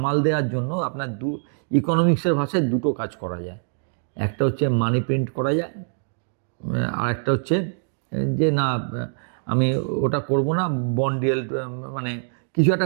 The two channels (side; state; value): left; silent; digital silence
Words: দেওয়ার জন্য আপনার ইকোনমিক্সের ভাষায় দুটো কাজ করা যায়। একটা হচ্ছে মানি প্রিন্ট করা যায়, আর একটা হচ্ছে যে না আমি ওটা করব না, বন্ড ইয়েল্ড, মানে কিছু